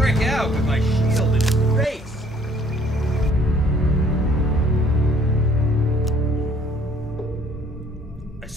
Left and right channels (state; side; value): normal; both; correlation 0.60